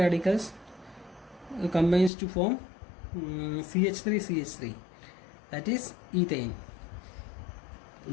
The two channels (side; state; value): right; drops out; at 2.1 s